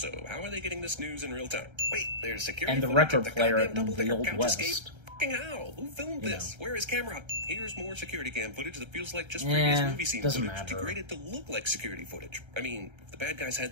how are they getting this news in real time? Wait, there's security And the footage of record player goddamn in double-decker the Old couch West. escape? Fucking how? Who filmed You this? know. Where is camera? Here's more security cam footage that feels like just previous movie scene doesn't footage matter. degraded to look like security footage. I mean, if the bad guys had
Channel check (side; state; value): left; late; 1.3 ms